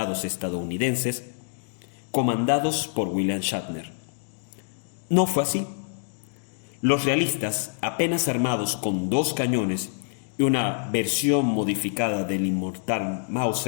estadounidenses comandados por William Shatner. No fue así. Los realistas, apenas armados con 2 cañones y una versión modificada del inmortal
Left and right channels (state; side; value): silent; right; digital silence